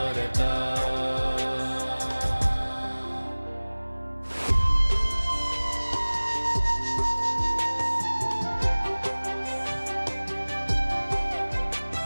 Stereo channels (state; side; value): inverted; both; correlation -1.00